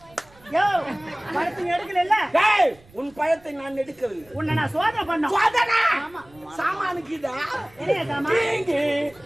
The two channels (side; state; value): right; noise; rumble, 27 dB below the sound